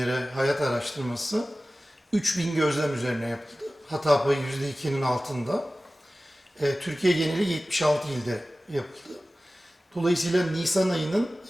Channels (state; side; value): normal; both; correlation 0.96